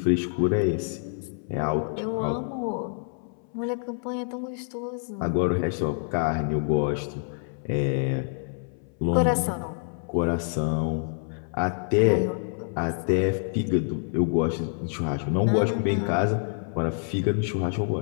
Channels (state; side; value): silent; right; 60 dB below the other